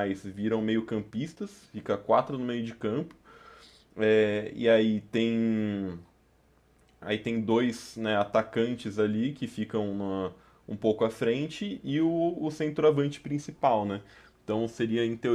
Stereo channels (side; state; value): both; identical; correlation 1.00